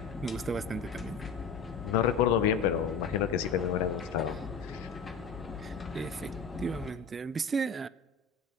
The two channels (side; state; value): right; quieter; 5.0 dB